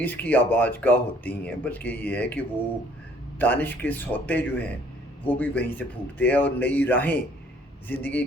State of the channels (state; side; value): normal; both; correlation 0.60